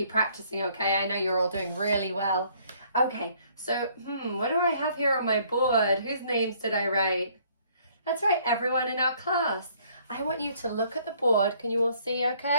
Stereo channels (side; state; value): both; inverted; correlation -0.62